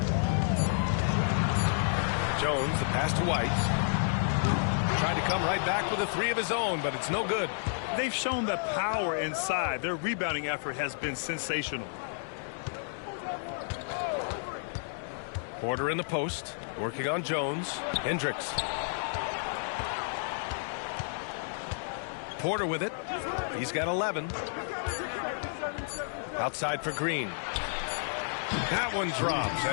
Jones, the pass to White. Tried to come right back with a 3 of his own, but it's no good. They've shown the power inside. Their rebounding effort has been sensational. Porter in the post, working on Jones. Hendricks. Porter with it. He's got 11. Outside for Green. That one drops,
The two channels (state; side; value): silent; right; digital silence